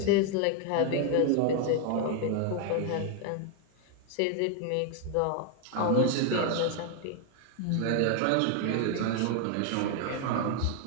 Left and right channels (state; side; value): different; both; correlation 0.01